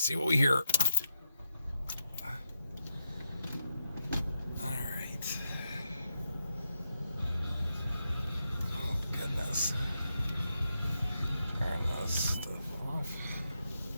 see what we hear. Alright. Oh, goodness. Turn this stuff off.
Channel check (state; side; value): inverted; both; correlation -0.83